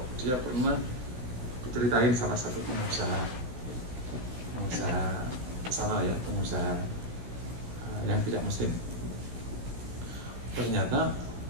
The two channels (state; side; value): late; left; 16 ms